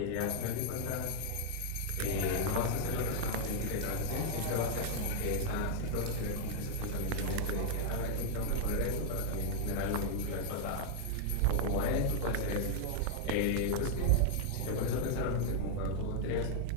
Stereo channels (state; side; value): different; both; correlation 0.00